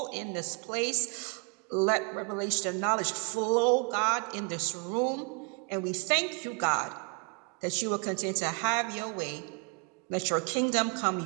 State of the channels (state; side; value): quieter; left; 35.1 dB